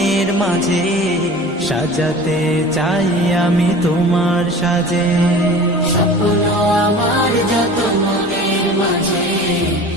মাঝে সাজাতে চাই আমি তোমার সাজে। স্বপ্ন আমার যত মনের মাঝে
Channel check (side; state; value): both; normal; correlation 0.39